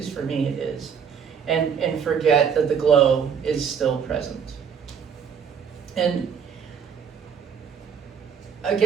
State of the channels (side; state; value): left; quieter; 7.1 dB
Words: for me it is, and forget that the glow is still present. And I